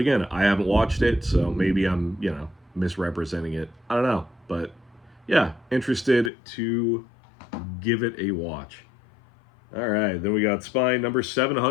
I haven't watched it, so maybe I'm, misrepresenting it. I don't know. But yeah, interested to give it a watch. All right, then we got Spine number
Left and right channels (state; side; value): drops out; right; at 6.3 s